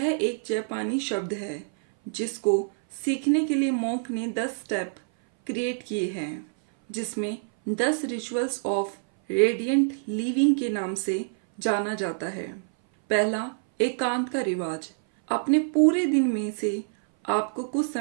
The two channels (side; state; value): left; silent; 59 dB below the other